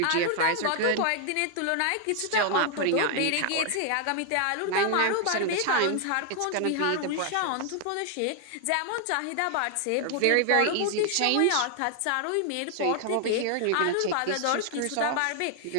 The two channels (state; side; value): different; both; correlation 0.00